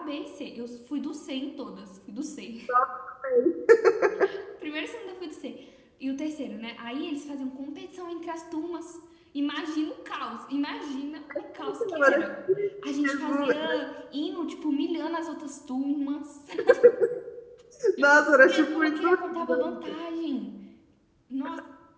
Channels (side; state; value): both; identical; correlation 1.00